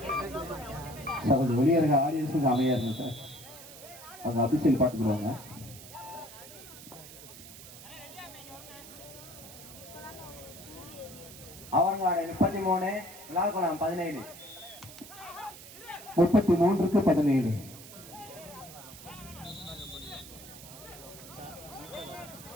கொஞ்சம் வெளியே இருக்க ஆடியன்ஸுக்கு அமையா இருங்க சார். அவங்க அபிஷியல் பார்த்துக்குவாங்க. அவர்காடு 33, விழாக்குளம் 17. 33க்கு 17.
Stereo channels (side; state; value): right; noise; hiss, 16 dB below the sound